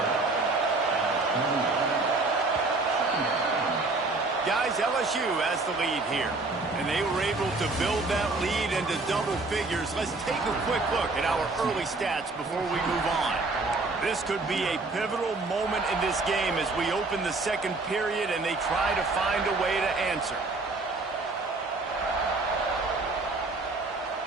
Guys, LSU has the lead here. And they were able to build that lead into double figures. Let's take a quick look at our early stats before we move on. This could be a pivotal moment in this game as we open the second period and they try to find a way to answer.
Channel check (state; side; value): quieter; left; 3.4 dB